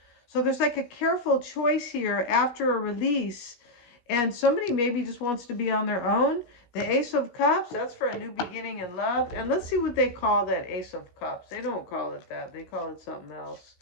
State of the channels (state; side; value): late; right; 17 ms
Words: So there's like a careful choice here after a release. And somebody maybe just wants to be on their own. The Ace of Cups, that's for a new beginning in love. And let's see what they call that Ace of Cups. They don't call it that. They call it something else